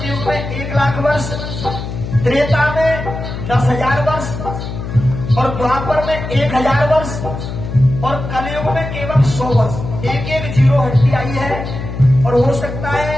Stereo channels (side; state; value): left; noise; hum, 7 dB below the sound